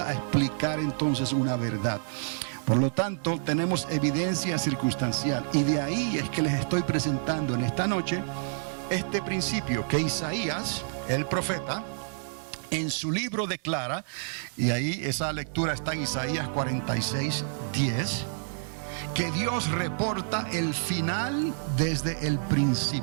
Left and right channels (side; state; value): left; silent; digital silence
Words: a explicar entonces una verdad. Por lo tanto, tenemos evidencia circunstancial y de ahí es que les estoy presentando en esta noche este principio que Isaías, el profeta, en su libro declara, y ahí esa lectura está en Isaías 46:10, que Dios reporta el final desde el